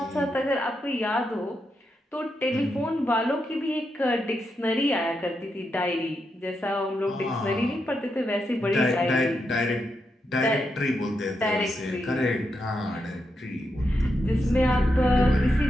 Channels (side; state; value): both; normal; correlation 0.84